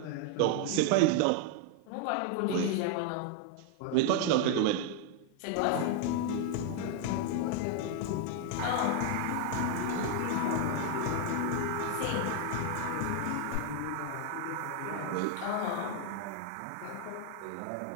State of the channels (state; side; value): different; both; correlation 0.00